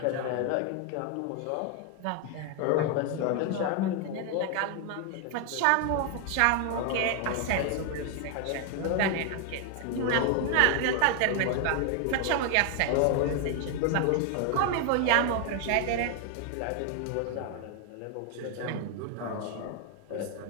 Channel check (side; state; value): both; different; correlation 0.00